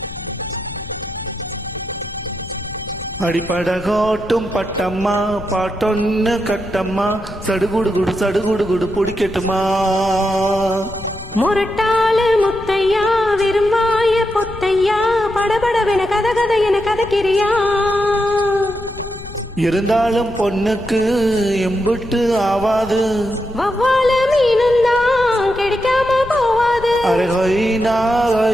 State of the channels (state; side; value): noise; left; rumble, 14 dB below the sound